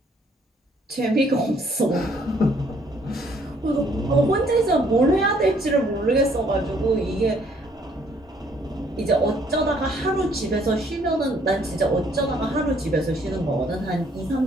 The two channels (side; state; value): both; normal; correlation 0.64